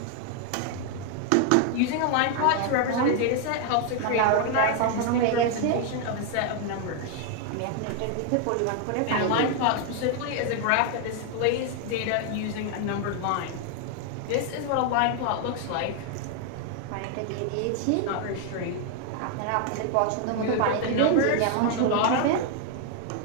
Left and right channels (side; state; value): both; different; correlation 0.00